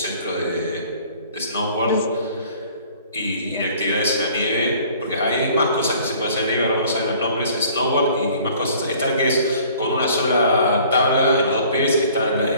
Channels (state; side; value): inverted; both; correlation -0.53